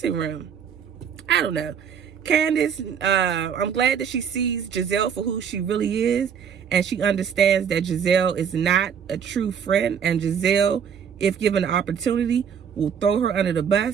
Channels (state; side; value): quieter; left; 7.6 dB